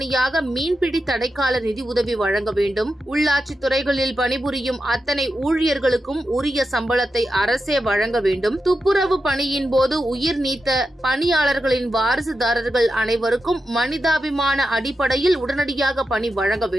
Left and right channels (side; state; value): both; normal; correlation 0.89